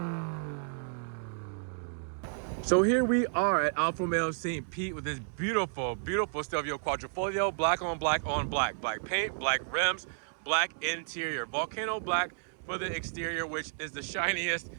So here we are at Alfa Romeo St. Pete with this beautiful, beautiful Stelvio Quadrifoglio, black on black on black. Black paint, black rims, black interior. Vulcano black for the exterior, which is the shiniest,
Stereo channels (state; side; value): silent; left; digital silence